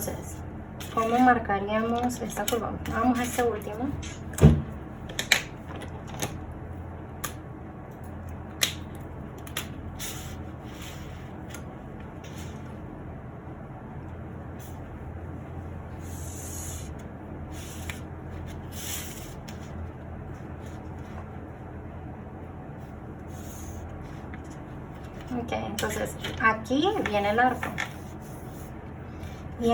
¿cómo marcaríamos esta curva? Vamos a este último. Ok, entonces aquí viene el arco. Y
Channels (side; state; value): both; identical; correlation 1.00